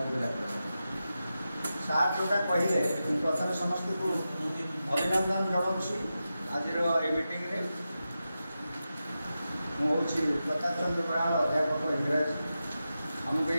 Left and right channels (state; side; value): inverted; both; correlation -0.91